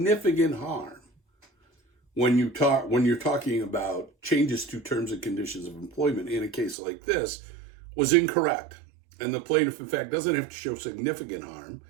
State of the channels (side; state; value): left; drops out; at 6.8 s